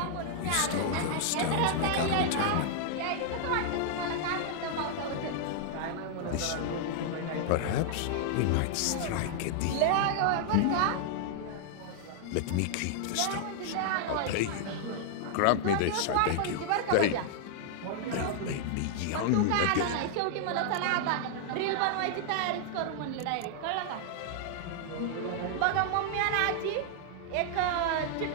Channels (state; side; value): different; both; correlation -0.01